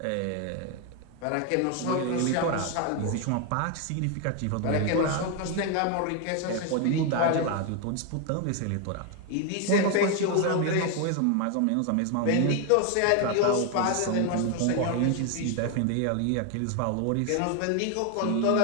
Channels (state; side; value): different; both; correlation 0.01